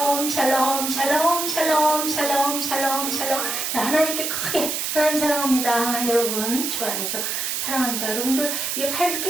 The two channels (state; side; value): noise; right; hiss, 2 dB below the sound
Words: 샬롬 샬롬 샬롬 샬롬 샬롬 샬롬. 자, 하나님께 크게 하나님 사랑합니다. 여러분 주 안에서 사랑합니다. 여러분들 이게 팔